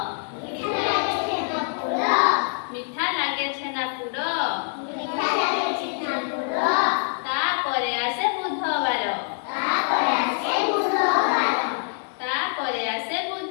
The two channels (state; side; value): silent; right; 62 dB below the other